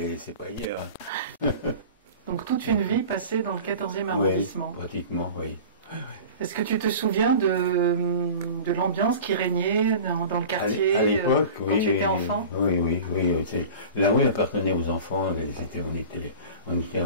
c'est pas hier. Donc toute une vie passée dans le 14e arrondissement. Oui, pratiquement, oui. Est-ce que tu te souviens de l'ambiance qui régnait dans le quartier à l'époque, quand tu étais enfant? Oui. La rue appartenait aux enfants. On était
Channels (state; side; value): inverted; both; correlation -0.37